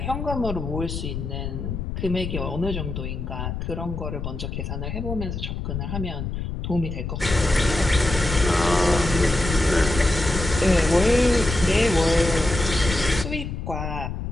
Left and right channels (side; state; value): left; noise; rumble, 5 dB below the sound